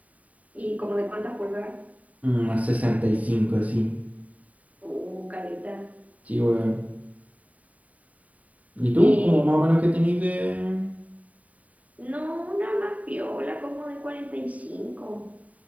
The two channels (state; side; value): late; left; 0.070 ms